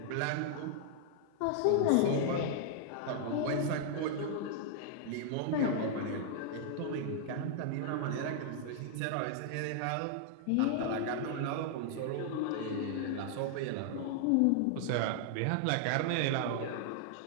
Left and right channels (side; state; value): both; different; correlation -0.01